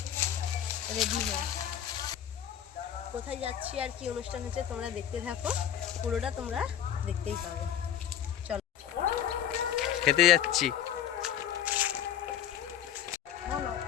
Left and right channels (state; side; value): quieter; right; 10.1 dB